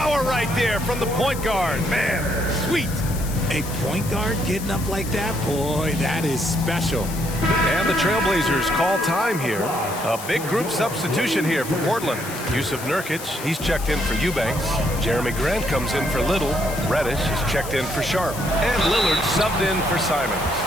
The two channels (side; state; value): left; noise; hiss, 11 dB below the sound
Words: right there from the point guard. Man, sweet. A point guard getting up like that? Boy, that is special. And the Trailblazers call time here. A big group substitution here for Portland. Yusuf Nurkic, he's checked in for Eubanks. Jeremy Grant comes in for Little. Reddish is checked in for Sharp. And Lillard subbed in for Simons.